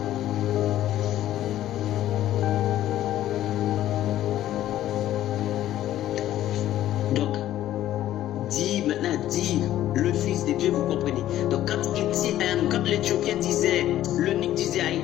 dire le Fils de Dieu, vous comprenez. Donc quand l'Éthiopien disait, l'eunuque disait à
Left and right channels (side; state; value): right; quieter; 13.0 dB